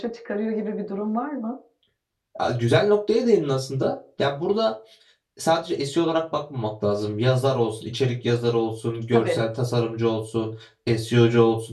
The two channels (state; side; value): identical; both; correlation 1.00